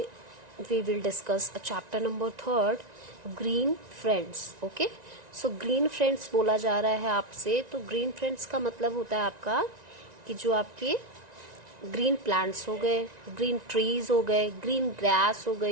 we will discuss a chapter number 3, green friends. Okay, so green friends बोला जा रहा है आपसे. तो green friends का मतलब होता है आपका कि जो आपके ग्रीन प्लांट्स हो गए, ग्रीन ट्रीज हो गए, ग्रीन ग्रास हो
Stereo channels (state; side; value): late; left; 1.9 ms